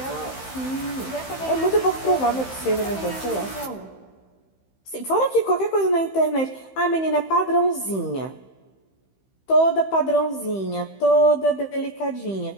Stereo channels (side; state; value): right; late; 15 ms